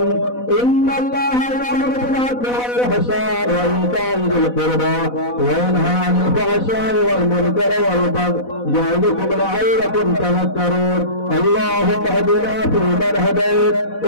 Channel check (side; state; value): right; late; 4.1 ms